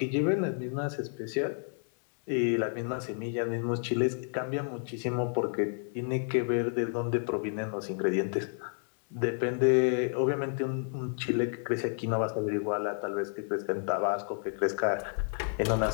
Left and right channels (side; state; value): right; silent; 57 dB below the other